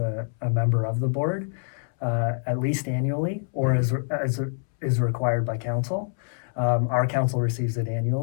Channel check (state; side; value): silent; right; 61 dB below the other